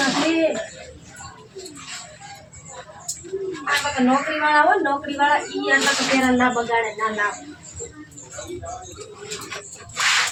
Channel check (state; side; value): identical; both; correlation 1.00